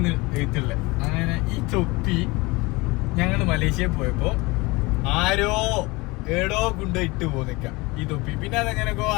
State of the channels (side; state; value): right; quieter; 23.8 dB